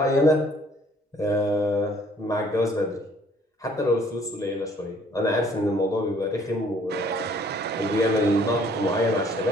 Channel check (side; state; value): both; normal; correlation 0.59